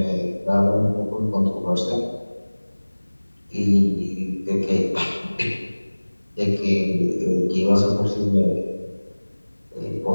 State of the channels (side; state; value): both; inverted; correlation -1.00